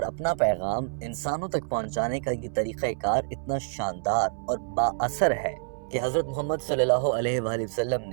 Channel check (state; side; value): silent; left; 60 dB below the other